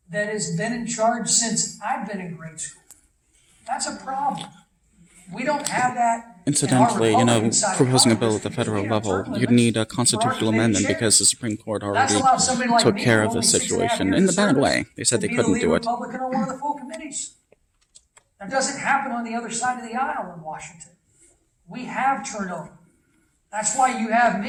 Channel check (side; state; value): both; identical; correlation 1.00